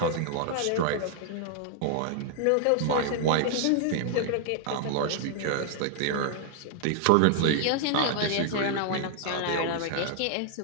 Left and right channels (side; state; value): both; different; correlation 0.00